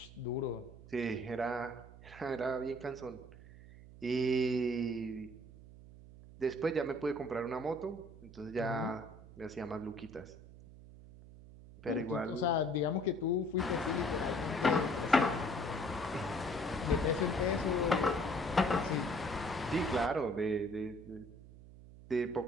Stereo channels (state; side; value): noise; right; hum, 18 dB below the sound